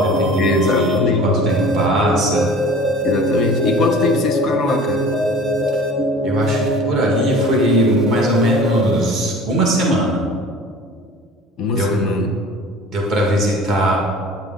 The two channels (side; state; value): both; normal; correlation 0.43